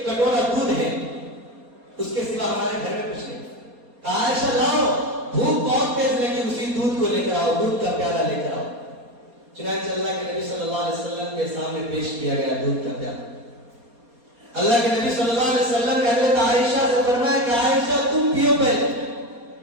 کٹورا دودھ ہے، اس کے سوا ہمارے گھر میں کچھ نہیں۔ عائشہ لاؤ، بھوک بہت تیز لگی، اسی دودھ کو لے کر آؤ، دودھ کا پیالہ لے کر آؤ۔ چنانچہ اللہ کے نبی صلی اللہ علیہ وسلم کے سامنے پیش کیا گیا دودھ کا پیالہ۔ اللہ کے نبی صلی اللہ علیہ وسلم نے حضرت عائشہ سے فرمایا کہ عائشہ تم پیو پہلے۔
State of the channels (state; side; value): late; left; 4.2 ms